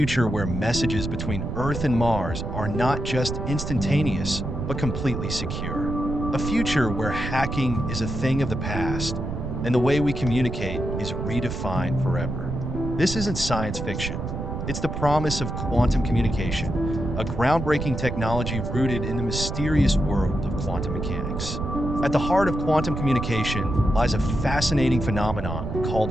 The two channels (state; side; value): noise; right; rumble, 4 dB below the sound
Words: where messages between Earth and Mars are not just instantaneous, but completely secure. A future where hacking is a thing of the past, and the way we communicate is redefined forever. This isn't science fiction. It's the promise of quantum communication, a groundbreaking technology rooted in the mysterious world of quantum mechanics. At the heart of quantum communication lies a fascinating phenomenon